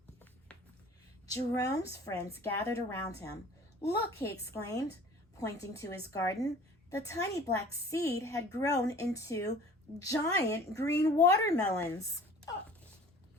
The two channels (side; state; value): both; normal; correlation 0.46